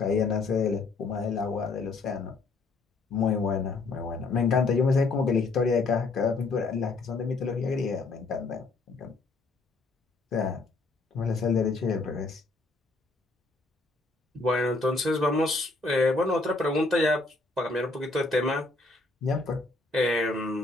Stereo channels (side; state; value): right; quieter; 3.5 dB